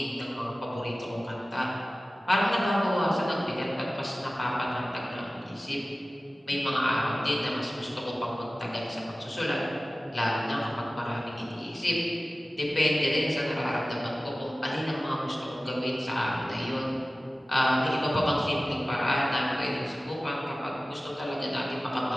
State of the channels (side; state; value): both; normal; correlation 0.97